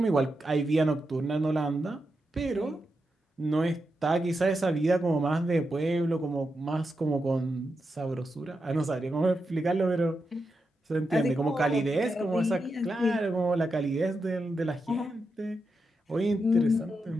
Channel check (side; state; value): both; normal; correlation 0.87